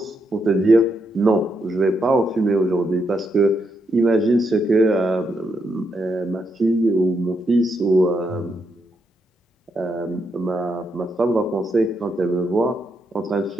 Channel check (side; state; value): both; normal; correlation 0.80